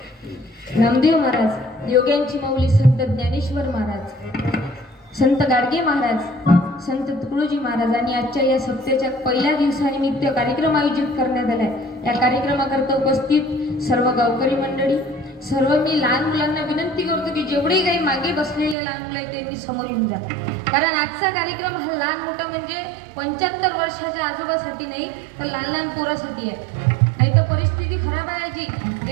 नामदेव महाराज, योग्यांची माऊली संत ज्ञानेश्वर महाराज, संत गाडगे महाराज, संत तुकडोजी महाराज आणि आजच्या या सप्त्याच्या पहिल्या दिवसानिमित्त कार्यक्रम आयोजित करण्यात आलाय. या कार्यक्रमाकरता उपस्थित सर्व गावकरी मंडळी, सर्व मी लहान मुलांना विनंती करतो की जेवढे काही मागे बसलेले लहान मुलं आहेत त्यांनी समोर येऊन जा. कारण आजचा कार्यक्रम हा लहान मोठा म्हणजे 75 वर्षाच्या आजोबासाठी नाही तर लहान लहान पोरासाठी आहे. नाही तर परिस्थिती खराब आहे. आजी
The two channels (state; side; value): drops out; left; at 18.8 s